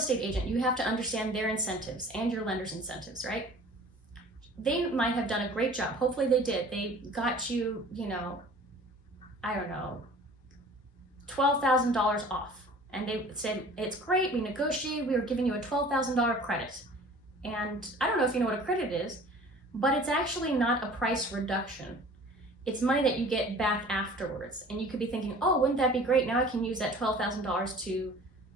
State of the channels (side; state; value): both; normal; correlation 0.47